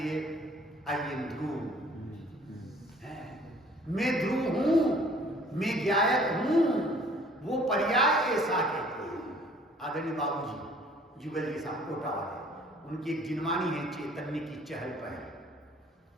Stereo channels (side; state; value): both; normal; correlation 0.55